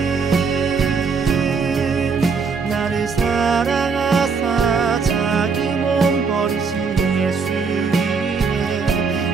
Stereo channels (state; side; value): quieter; left; 5.2 dB